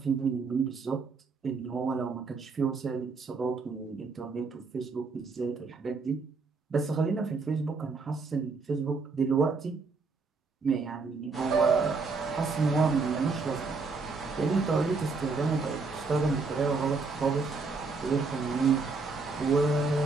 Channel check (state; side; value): quieter; left; 4.3 dB